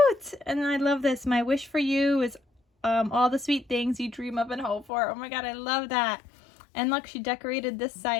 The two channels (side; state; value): right; drops out; at 4.9 s